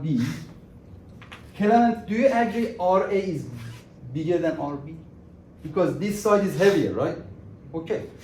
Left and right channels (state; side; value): identical; both; correlation 1.00